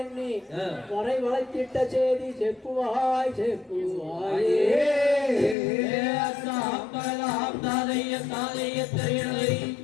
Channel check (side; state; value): right; drops out; at 5.6 s